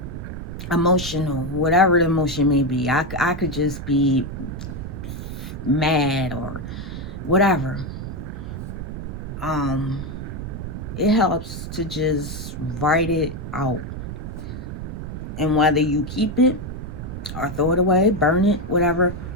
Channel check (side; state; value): right; noise; rumble, 7 dB below the sound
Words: emotional, whatever the emotion may be. I could just be mad or whatever. It helps to just write it out. And whether you keep it or throw it away, burn it, whatever,